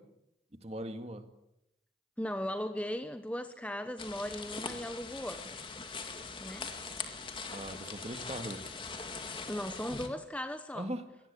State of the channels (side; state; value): both; normal; correlation 0.67